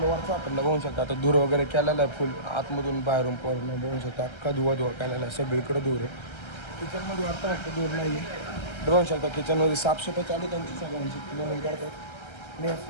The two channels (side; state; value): right; late; 1.3 ms